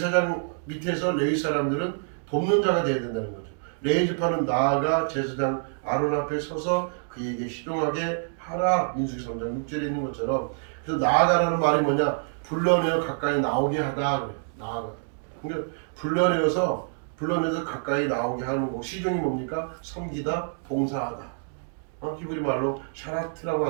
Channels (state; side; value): silent; left; digital silence